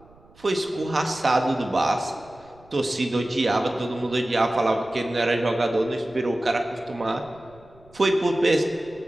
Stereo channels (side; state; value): right; noise; rumble, 26 dB below the sound